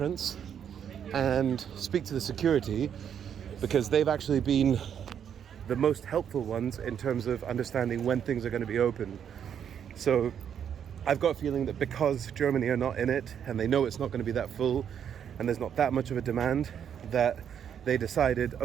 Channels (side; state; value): left; quieter; 8.5 dB